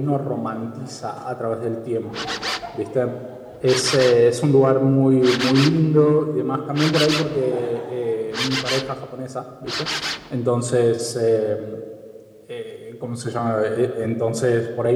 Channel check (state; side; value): identical; both; correlation 1.00